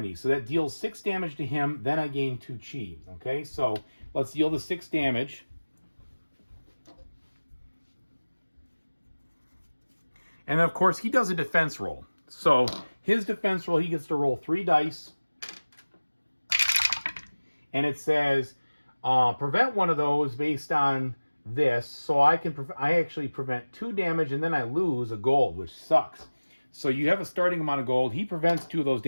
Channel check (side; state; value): both; inverted; correlation -1.00